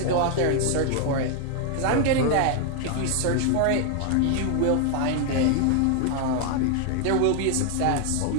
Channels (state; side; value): different; both; correlation 0.00